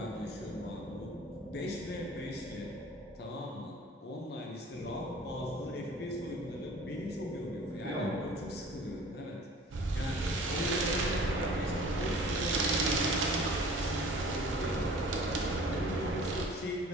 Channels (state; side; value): normal; both; correlation 0.47